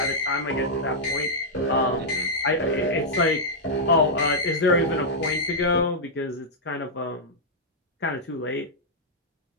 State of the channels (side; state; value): both; normal; correlation -0.07